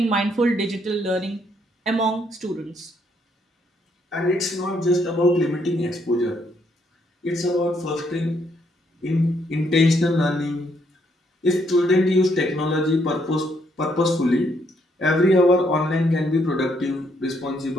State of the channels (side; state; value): both; normal; correlation 0.72